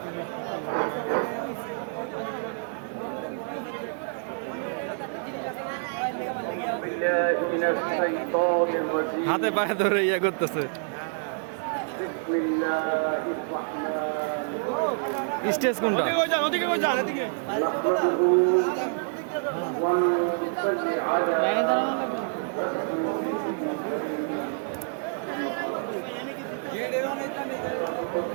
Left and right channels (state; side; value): silent; left; 60 dB below the other